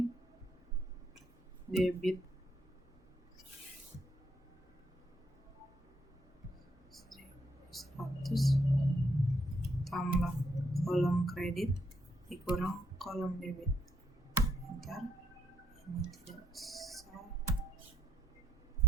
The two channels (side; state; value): both; normal; correlation 0.74